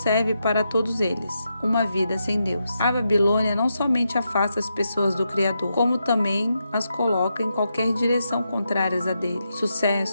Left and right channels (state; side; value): inverted; both; correlation -0.84